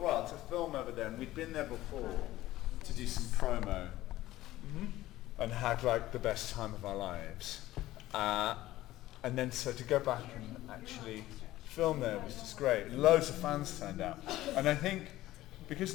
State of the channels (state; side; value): quieter; right; 15.8 dB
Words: film over there, and we'd been there before to do some promo, and had like the best time of our lives. And then so to go back and actually film there was just great. Loads of fans turned out. And I think